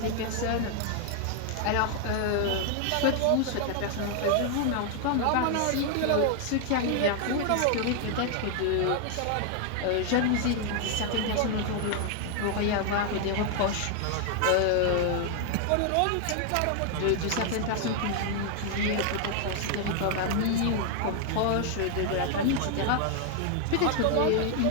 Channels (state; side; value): different; both; correlation 0.00